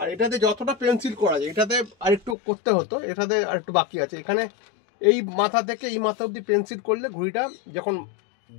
এটাতে যতটা পেন্সিল করা যায়, এটাতে আরেকটু করতে হতো, এটাতে আরেকটু বাকি আছে। এখানে এই মাথা থেকে এই মাথা অবধি পেন্সিল করলে ঘুড়িটা যখন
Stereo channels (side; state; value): right; drops out; at 2.4 s